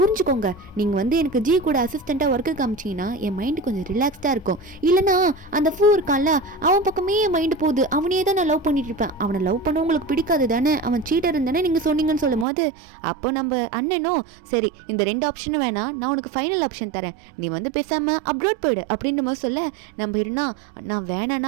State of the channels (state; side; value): drops out; left; at 12.5 s